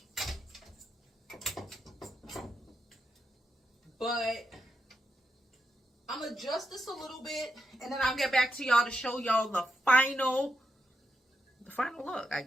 but I'm going to adjust this a little bit, and then I'll get back to y'all to show y'all the final look, I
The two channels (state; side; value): normal; both; correlation 0.84